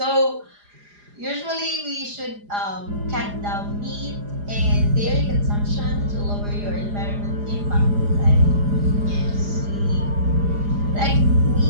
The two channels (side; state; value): left; late; 4.9 ms